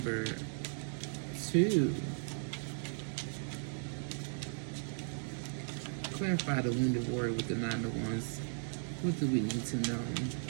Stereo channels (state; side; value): silent; left; digital silence